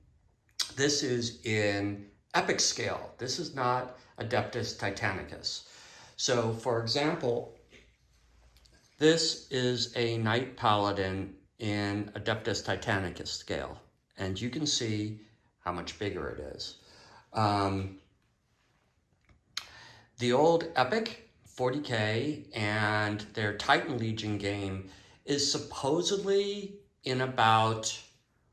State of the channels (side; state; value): both; identical; correlation 1.00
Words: this is in epic scale. This is not Adeptus Titanicus. So for example, this is a Knight Paladin in Adeptus Titanicus scale, and you can see how much bigger it is. The old Epic 40K and their Titan Legion game is supposedly in about